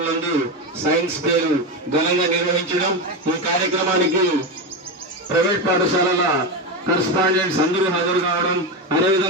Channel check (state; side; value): normal; both; correlation 0.15